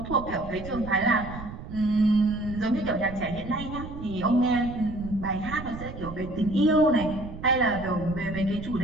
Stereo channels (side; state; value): right; noise; rumble, 11 dB below the sound